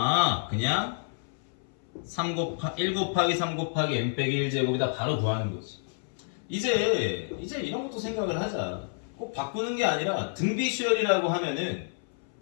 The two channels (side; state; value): right; silent; 59 dB below the other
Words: 그냥 1 곱하기 3 곱하기 n 빼기 1제곱이다 바로 구하는 거지. 이제 이런 것도 생각을 하자. 꼭 바꾸는 게 아니라 등비 수열이라고 하면은